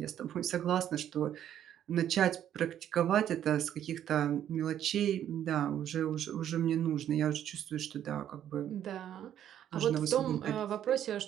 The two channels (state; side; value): quieter; left; 10.5 dB